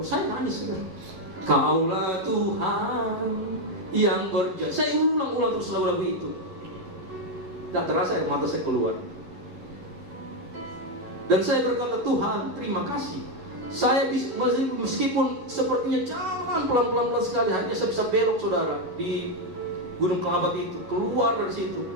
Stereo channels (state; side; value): late; left; 11 ms